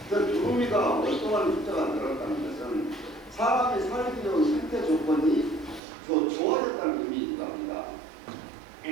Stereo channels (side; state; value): left; drops out; at 5.8 s